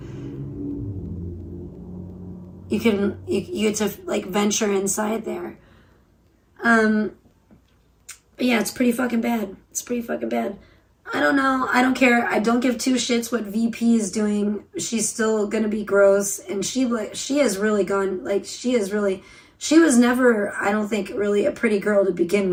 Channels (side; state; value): both; identical; correlation 1.00